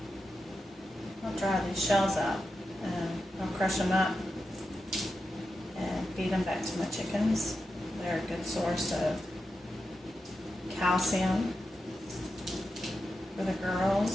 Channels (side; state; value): both; normal; correlation 0.89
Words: I'll dry these shells out and I'll crush them up and feed them back to my chickens. They're a good source of calcium for the